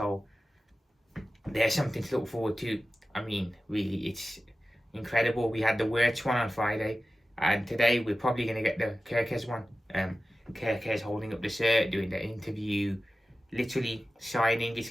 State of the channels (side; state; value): both; normal; correlation 0.94